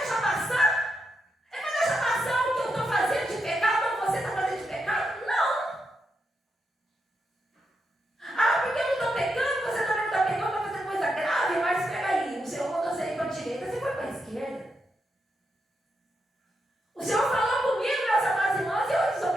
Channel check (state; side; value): normal; both; correlation 0.84